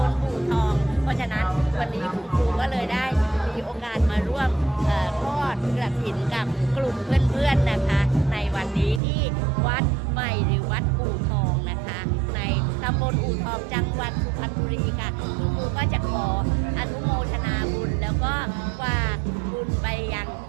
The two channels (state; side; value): drops out; left; at 9.0 s